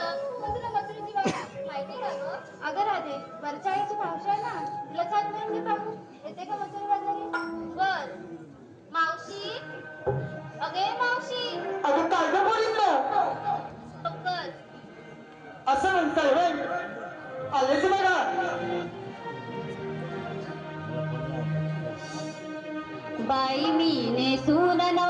पण तुला मथुरेची वाट माहिती का गं? अगं राधे, वरच्या आईची मावशी आहे ना, तिला छान मिळून घे पाहू. येते का मथुरा बाजारी? बर. मावशी, अगे मावशी. अगं काय गं बोलितलं? पक्कल. असं म्हणताय होय? आलेच बघा. बाई मी नेसून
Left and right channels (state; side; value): identical; both; correlation 1.00